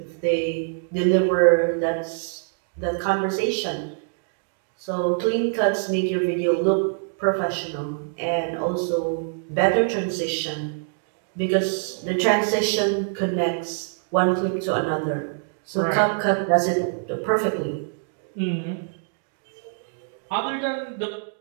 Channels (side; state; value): left; silent; digital silence